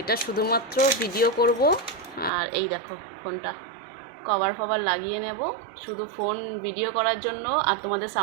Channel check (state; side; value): drops out; left; at 2.3 s